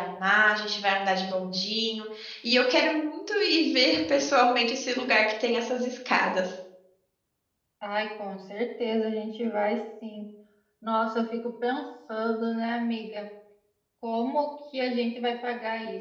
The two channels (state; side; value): identical; both; correlation 1.00